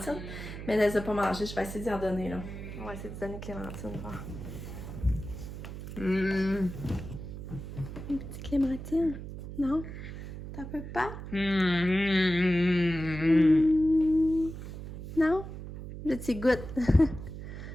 mais elle les a pas mangées. Je vais essayer d'y en donner, là. On va essayer de donner clémentine, voir. Une petite clémentine? Non? T'en peux pas? Non? Là, tu goûtes.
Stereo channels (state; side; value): noise; right; hum, 9 dB below the sound